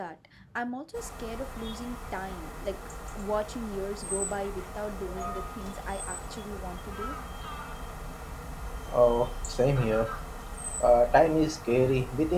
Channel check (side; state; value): both; identical; correlation 1.00